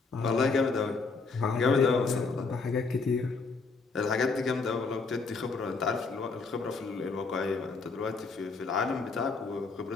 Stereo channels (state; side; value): quieter; right; 4.3 dB